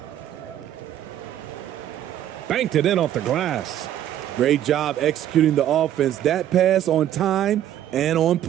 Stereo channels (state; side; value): quieter; left; 11.6 dB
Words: Banked it in off the glass. Great job executing the offense. That pass on time and on